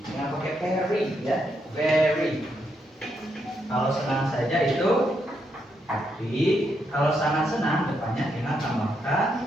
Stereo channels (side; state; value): both; normal; correlation 0.79